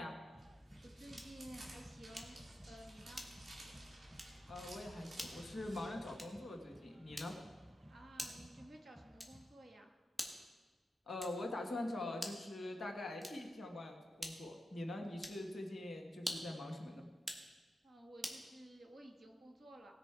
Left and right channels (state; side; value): normal; both; correlation 0.90